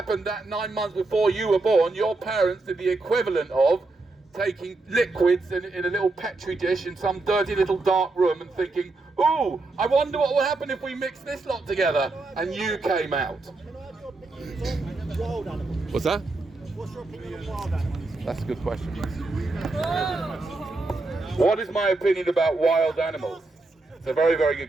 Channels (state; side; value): quieter; left; 3.3 dB